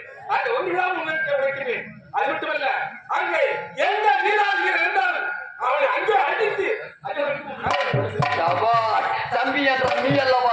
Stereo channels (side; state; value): both; identical; correlation 1.00